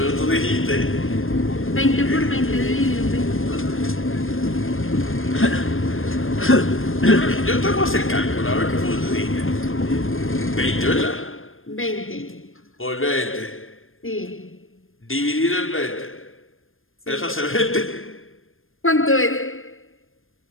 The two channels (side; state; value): right; late; 0.60 ms